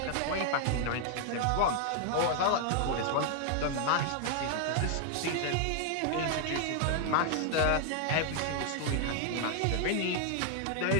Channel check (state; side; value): different; both; correlation 0.00